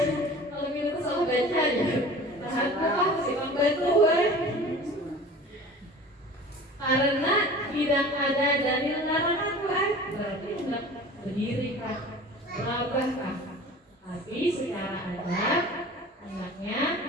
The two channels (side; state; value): both; normal; correlation 0.41